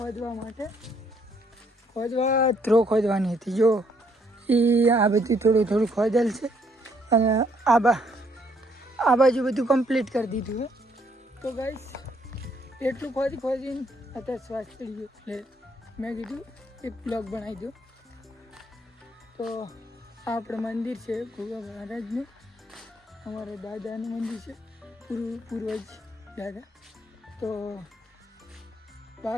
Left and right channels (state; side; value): normal; both; correlation 0.68